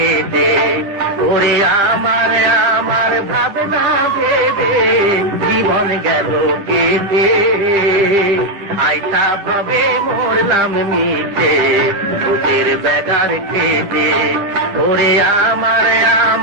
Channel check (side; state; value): left; late; 10 ms